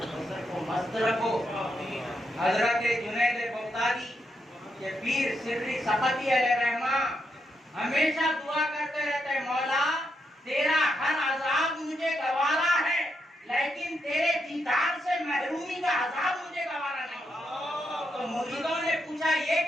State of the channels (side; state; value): both; normal; correlation 0.82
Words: बसर को मस्त रखो। हजरत जुनैद बगदादी के पीर सिर्री सफती अलैहिर्रहमा हमेशा दुआ करते रहते हैं, मौला तेरा हर अजाब मुझे गवारा है, लेकिन तेरे दीदार से महरूमी का अजाब मुझे गवारा नहीं। तो मुरीदों ने पूछा ये